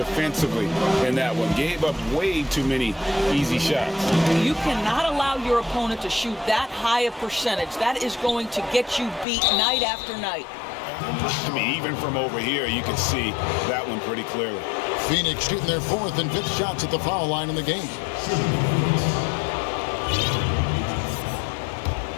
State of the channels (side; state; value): right; drops out; at 9.2 s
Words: in that one. Gave up way too many easy shots. You cannot allow your opponent to shoot that high a percentage. That is going to get you beat night after night. I mean, even from over here, you can see that one pretty clearly. Phoenix shooting their 4th and 5th shots at the foul line in the game.